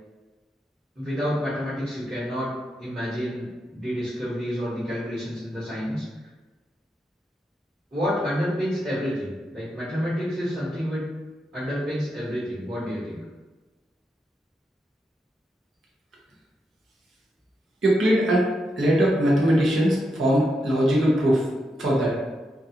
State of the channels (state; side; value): normal; both; correlation 0.84